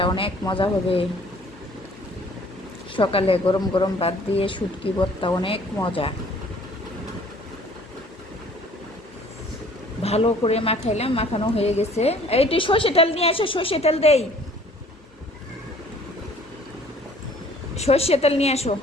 অনেক মজা হবে। সকালে গরম গরম ভাত দিয়ে শুটকি ভর্তা অনেক মজা। ভালো করে মাখাইলাম, মাখানো হয়ে গেছে। এইটি সর্ষে তেল নিয়ে আসো, সর্ষে তেল দেই, সর্ষে তেল নিয়ে আসো,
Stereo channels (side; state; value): both; normal; correlation 0.54